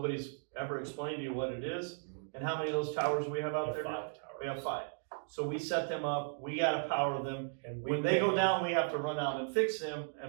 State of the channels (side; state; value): left; silent; digital silence